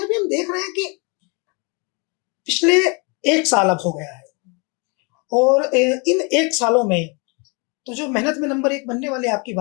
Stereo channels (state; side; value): quieter; right; 32.4 dB